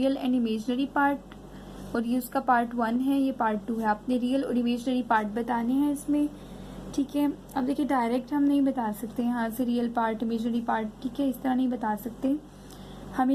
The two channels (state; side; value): identical; both; correlation 1.00